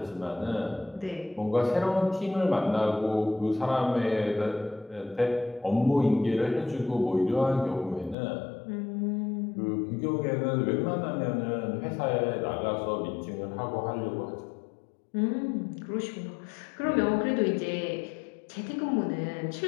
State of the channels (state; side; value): drops out; right; at 8.2 s